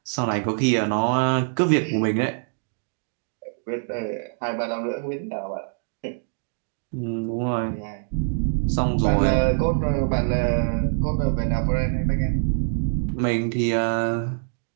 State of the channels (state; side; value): silent; left; digital silence